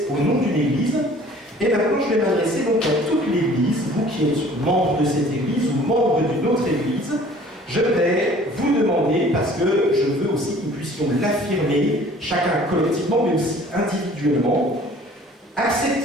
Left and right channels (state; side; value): normal; both; correlation 0.51